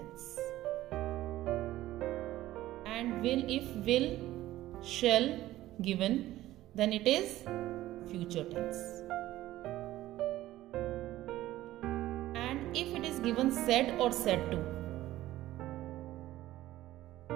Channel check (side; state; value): left; quieter; 15.3 dB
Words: And will, if will, shall given, then it is future tense. And if it is given said or said to,